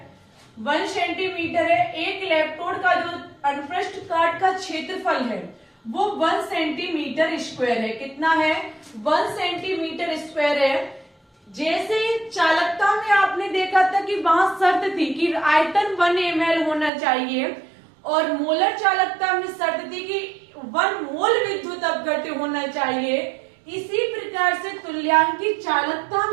1 सेंटीमीटर है। एक इलेक्ट्रोड का जो अनुप्रस्थ काट का क्षेत्रफल है वो 1 सेंटीमीटर स्क्वायर है। कितना है? 1 सेंटीमीटर स्क्वायर है। जैसे चालकता में आपने देखा था कि वहां शर्त थी कि आयतन 1 ml होना चाहिए, और मोलर चालकता में शर्त थी कि 1 मोल विद्युत अपघट्य होना चाहिए। इसी प्रकार से तुल्यांकी चालकता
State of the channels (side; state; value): left; drops out; at 16.9 s